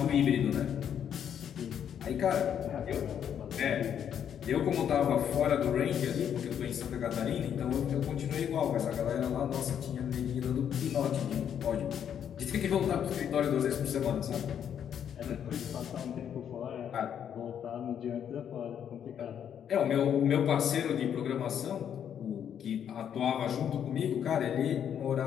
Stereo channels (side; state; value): right; quieter; 8.9 dB